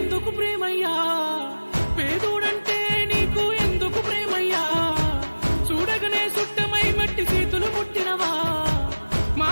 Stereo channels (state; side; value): inverted; both; correlation -1.00